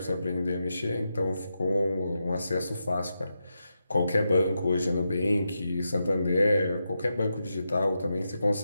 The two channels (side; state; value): both; inverted; correlation -0.87